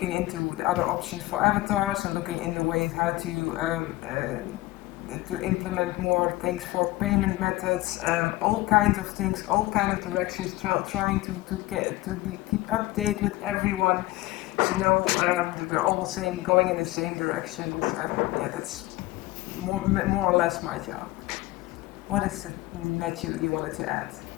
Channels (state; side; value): quieter; right; 18.8 dB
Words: into the other options for avatars and looking into ways how to implement more things for payment methods, all kinds of things, all kind of directions, trying to keep update with everyone, to know that we're all going in the same directions, and yeah, that's more or less my job. What is it, Matthew, you wanted to add?